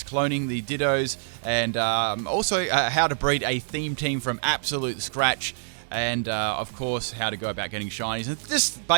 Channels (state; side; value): silent; left; 59 dB below the other